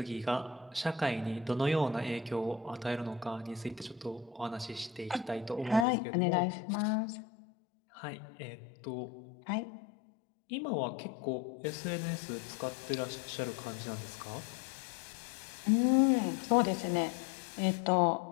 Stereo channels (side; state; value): right; drops out; at 5.9 s